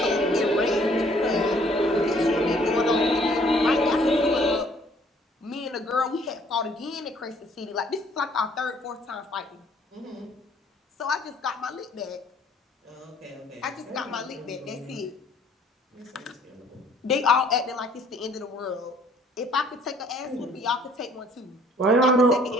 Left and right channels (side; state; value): both; normal; correlation 0.60